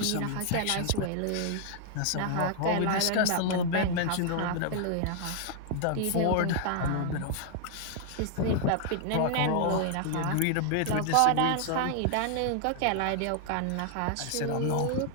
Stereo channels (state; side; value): different; both; correlation 0.00